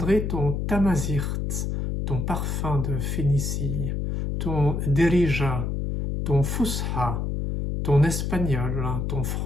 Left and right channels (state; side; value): noise; left; hum, 1 dB below the sound